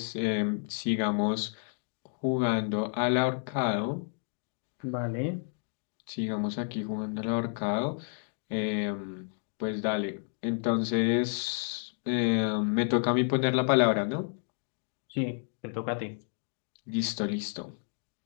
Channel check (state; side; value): silent; right; 57 dB below the other